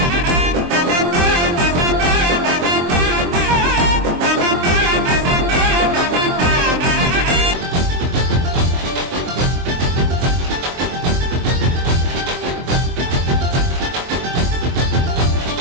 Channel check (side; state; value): left; late; 23 ms